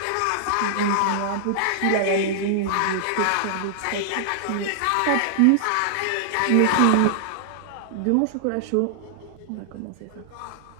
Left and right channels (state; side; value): different; both; correlation -0.01